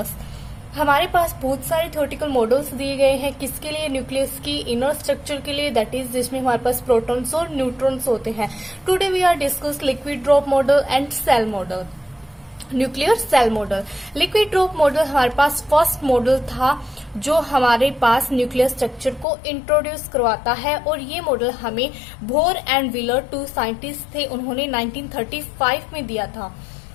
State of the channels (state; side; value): drops out; right; at 19.2 s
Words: हमारे पास बहुत सारे थियोरेटिकल मॉडल्स दिए गए हैं किसके लिए, न्यूक्लियस की इनर स्ट्रक्चर के लिए, दैट इज जिसमें हमारे पास प्रोटॉन्स और न्यूट्रॉन्स होते हैं। Today we are discuss liquid drop model and shell model. Nuclear shell model, liquid drop model हमारे पास फर्स्ट मॉडल था जो हमारे पास न्यूक्लियर स्ट्रक्चर को इंट्रोड्यूस करवाता है, और ये मॉडल हमें Bohr and Wheeler, two scientist थे, उन्होंने 1935 में दिया था।